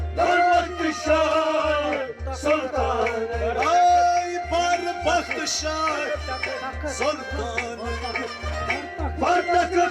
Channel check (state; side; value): identical; both; correlation 1.00